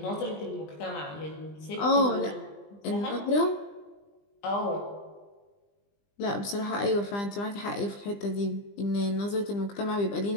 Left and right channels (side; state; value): right; late; 20 ms